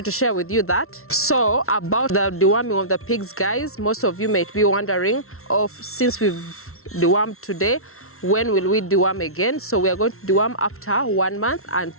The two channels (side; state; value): right; late; 0.62 ms